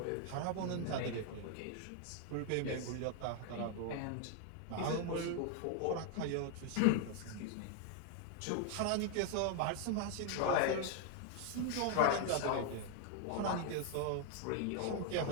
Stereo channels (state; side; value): different; both; correlation 0.00